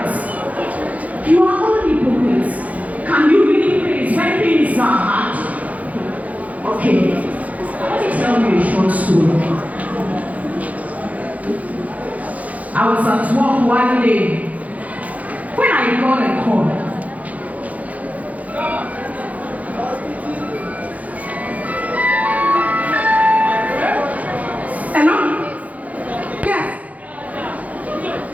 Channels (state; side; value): late; left; 0.072 ms